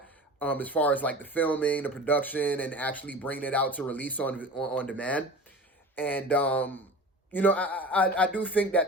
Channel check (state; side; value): normal; both; correlation 0.35